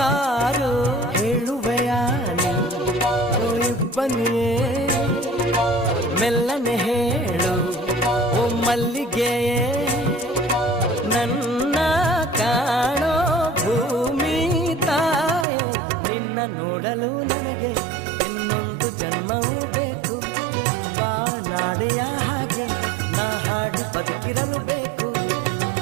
ಹೇಳುವೆಯಾ ಬನ್ನಿಯೇ ಮೆಲ್ಲನೆ ಹೇಳು ಓ ಮಲ್ಲಿಗೆಯೇ, ನನ್ನ ಕಾಣೋ ಭೂಮಿ ತಾಯೇ, ನಿನ್ನ ನೋಡಲು ನನಗೆ ಇನ್ನೊಂದು ಜನ್ಮವೂ ಬೇಕು, ಬಾನಾಡೆಯ ಹಾಗೆ ನಾ ಹಾಡಿ ಬದುಕಿರಲು ಬೇಕು,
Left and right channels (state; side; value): drops out; left; at 15.5 s